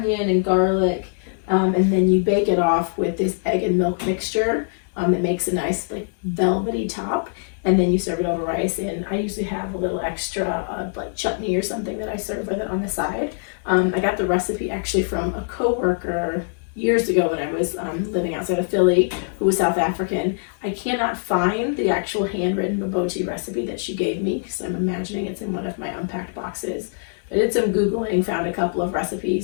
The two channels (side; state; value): right; silent; 64 dB below the other